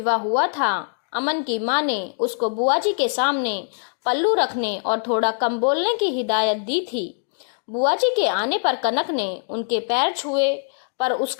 हुआ था। अमन की माँ ने उसको बुआ जी के सामने पल्लू रखने और थोड़ा कम बोलने की हिदायत दी थी। बुआ जी के आने पर कनक ने उनके पैर छुए, पर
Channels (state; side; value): silent; right; digital silence